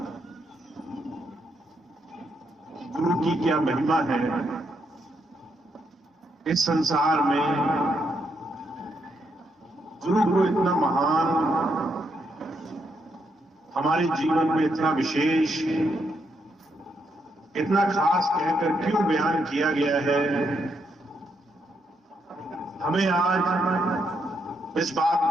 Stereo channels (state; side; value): normal; both; correlation 0.78